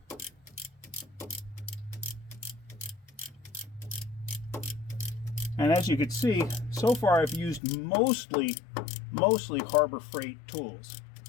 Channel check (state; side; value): drops out; right; at 7.6 s